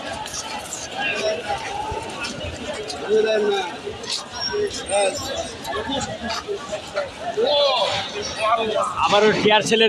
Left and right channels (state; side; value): identical; both; correlation 1.00